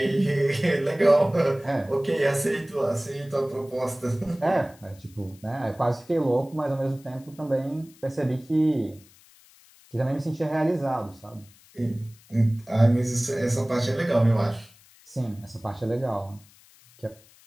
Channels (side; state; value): left; noise; hiss, 27 dB below the sound